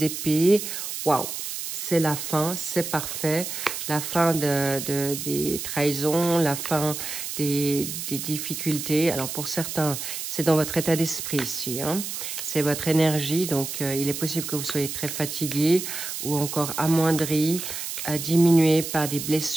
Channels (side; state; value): right; noise; hiss, 6 dB below the sound